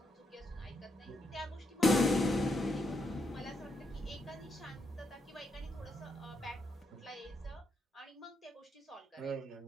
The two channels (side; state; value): both; normal; correlation 0.79